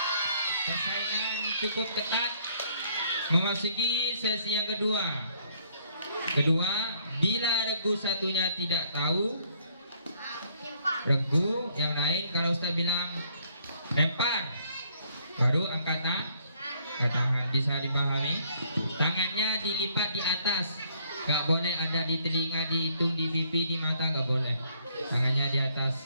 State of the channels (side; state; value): both; inverted; correlation -0.65